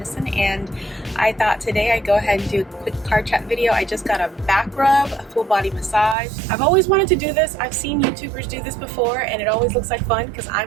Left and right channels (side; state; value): left; drops out; at 6.2 s